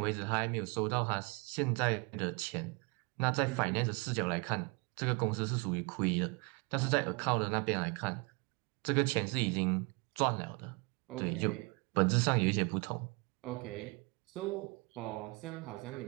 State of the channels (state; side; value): quieter; left; 28.8 dB